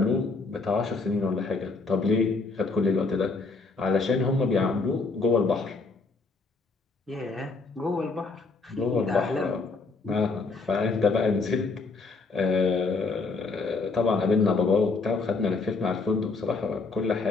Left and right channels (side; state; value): right; quieter; 4.0 dB